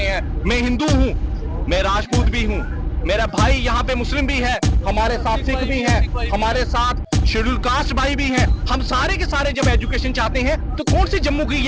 मैं हिंदू हूँ, मैं राजपूत भी हूँ, मेरा भाई यहाँ पे मुस्लिम भी है, हमारे साथ सिख भी हैं, हमारे साथ शेड्यूल कास्ट भाई भी हैं। हम सारे के सारे जब एजुकेशन चाहते हैं, तो कौन सी जम्मू की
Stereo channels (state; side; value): identical; both; correlation 1.00